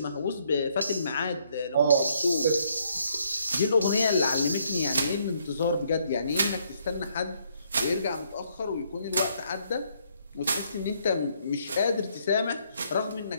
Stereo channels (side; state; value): both; inverted; correlation -0.70